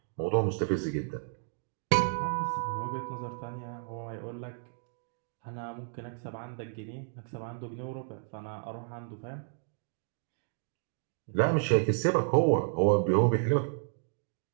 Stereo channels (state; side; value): silent; left; digital silence